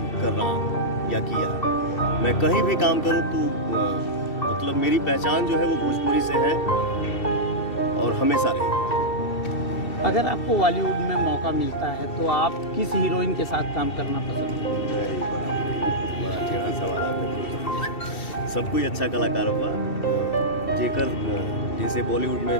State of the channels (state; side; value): late; right; 2.7 ms